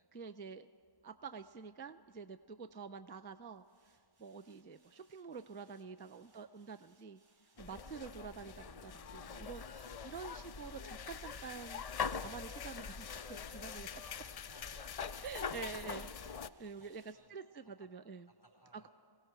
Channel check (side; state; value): right; late; 1.1 ms